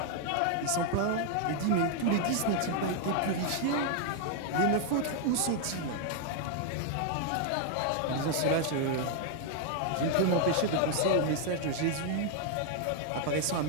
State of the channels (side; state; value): both; different; correlation 0.00